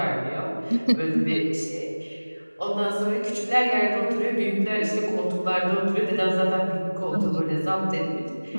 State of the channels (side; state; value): both; inverted; correlation -1.00